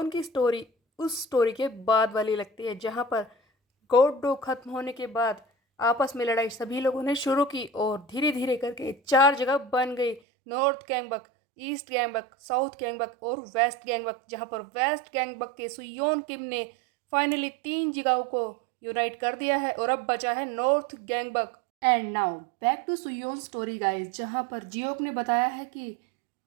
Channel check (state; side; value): drops out; left; at 10.2 s